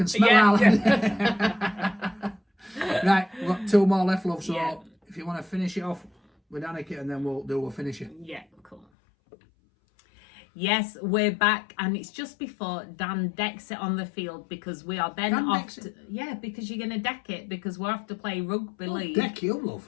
smell Yeah. Right, we've got two more left, love. So Yeah. if you want to finish it off with Danika, and then we'll finish it. Yeah, cool. Yes, we're back, and it's just before Dan decks it on the field because we are then Dan off. decks it? Yeah, because you're going to deck it because we're off to play rugby league. Deck you, love.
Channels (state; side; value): drops out; right; at 8.8 s